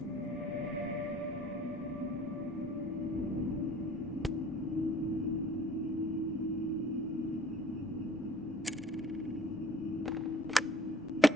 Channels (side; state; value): both; normal; correlation 0.52